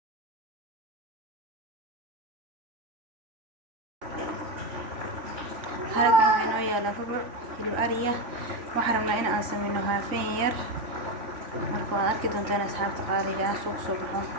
هذا كان ويا لفبر في الأرية وحرمنا إن أسمينها فير marka arki doontaan asxaabta qaaliga ah suuq soo baxo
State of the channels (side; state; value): left; late; 3.5 ms